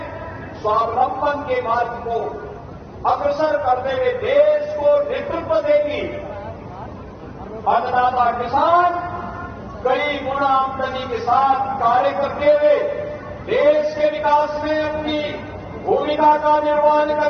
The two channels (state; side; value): identical; both; correlation 1.00